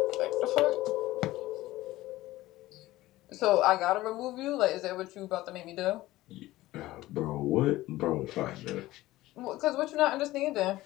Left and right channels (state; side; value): quieter; right; 17.1 dB